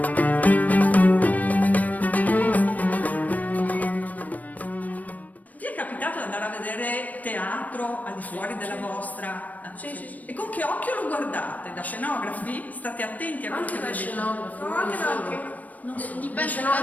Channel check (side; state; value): right; late; 0.075 ms